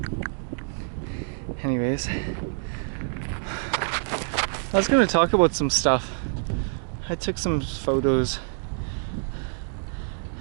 Anyways, I was gonna talk about some stuff. I took some photos,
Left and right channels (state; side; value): silent; left; digital silence